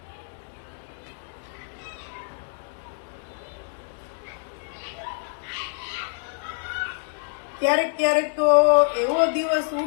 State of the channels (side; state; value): right; silent; digital silence